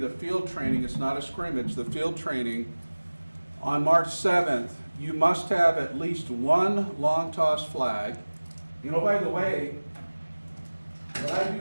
field training, it's not a scrimmage, the field training, on March 7th, you must have at least one long toss flag. You know, by the way, what I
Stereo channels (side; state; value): both; inverted; correlation -1.00